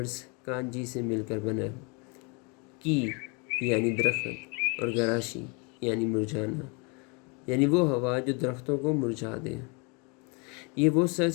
کانجی سے مل کر بنا ہے، کی یعنی درخت اور گراشی یعنی مرجھانا، یعنی وہ ہوا جو درختوں کو مرجھا دے۔ یہ وہ سرد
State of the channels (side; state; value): right; quieter; 32.1 dB